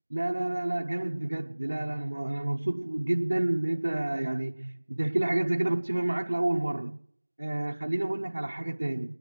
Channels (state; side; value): inverted; both; correlation -1.00